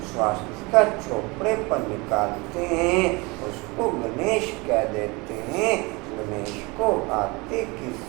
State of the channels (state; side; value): quieter; left; 25.9 dB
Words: स्वास्थ्य का चोपड़े पर निकालते हैं, उसको गणेश कह देते हैं। गणेश को हाथी की